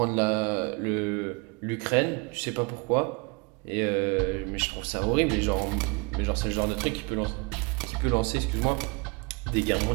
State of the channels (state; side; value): quieter; left; 30.6 dB